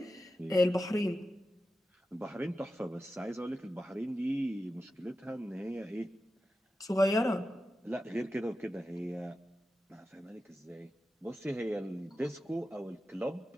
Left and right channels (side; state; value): both; normal; correlation 0.92